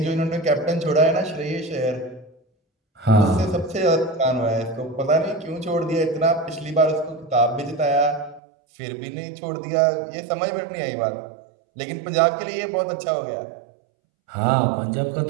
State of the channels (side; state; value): left; drops out; at 8.4 s